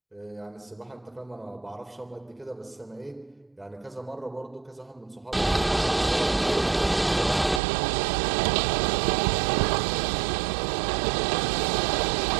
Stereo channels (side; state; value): left; drops out; at 7.6 s